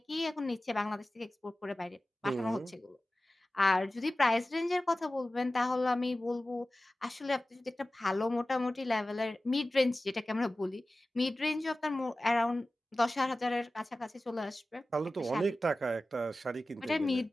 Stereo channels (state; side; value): normal; both; correlation 0.96